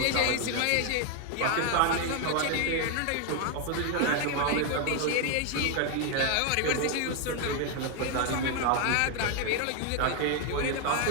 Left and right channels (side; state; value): both; different; correlation 0.01